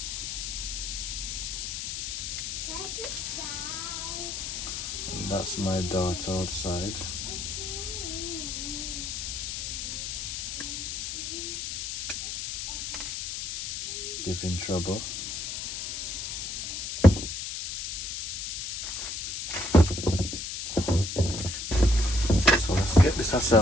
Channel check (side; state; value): left; noise; hiss, 4 dB below the sound